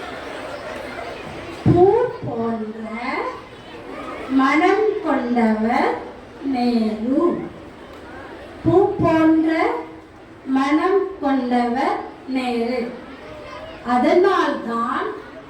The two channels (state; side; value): identical; both; correlation 1.00